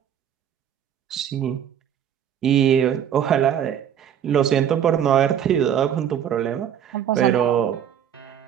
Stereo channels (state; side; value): quieter; left; 9.4 dB